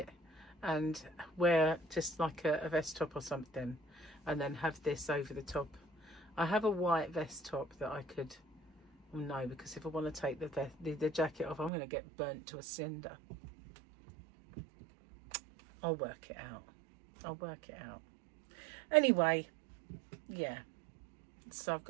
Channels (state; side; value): drops out; left; at 11.7 s